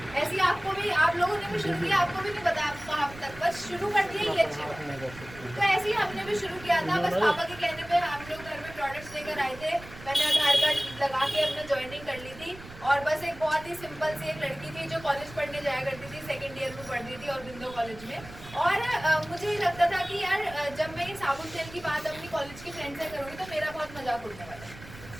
ऐसी आपको भी, आप लोगों ने भी शुरू किया, आपको भी नहीं पता आप कहाँ तक, बस शुरू कर दिया, ये अच्छी बात है। तो ऐसे ही हमने भी शुरू किया था, बस पापा के कहने पे हम लोग घर में प्रोडक्ट्स लेकर आए थे। मैंने आधार कार्ड लगा के अपना ज्वाइनिंग कर ली थी, और बस एक बहुत ही सिंपल सी एक लड़की थी जो कॉलेज पढ़ने जाया करती थी, सेकेंड ईयर में पढ़ रही थी और बिंदो कॉलेज में। और मुझे लगता था कि यार जब मैं ये साबुन तेल की बात अपनी कॉलेज की फ्रेंड से करूँगी तो मेरा बहुत मजाक उड़ने वाला है,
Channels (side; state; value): right; noise; rumble, 16 dB below the sound